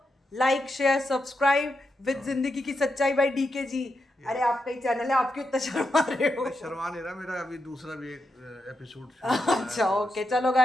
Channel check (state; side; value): normal; both; correlation 0.85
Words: लाइक शेयर सब्सक्राइब विद जिंदगी की सच्चाई बाय डीके जी। अरे आपका ही चैनल है, आप क्यों इतना शर्मा रहे हो? शर्मा नहीं रहा, मेरा अभी दूसरा भी एक एपिसोड अच्छा, ओके, चलो